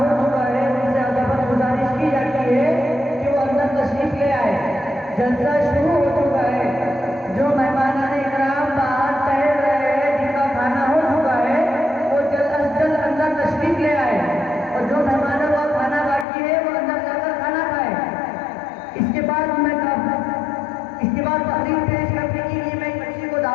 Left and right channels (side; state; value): right; drops out; at 16.2 s